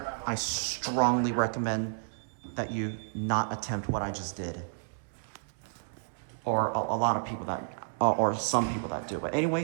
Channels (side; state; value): left; silent; digital silence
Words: I strongly recommend that you not attempt what I just did. Or a lot of people that, or some people that do. But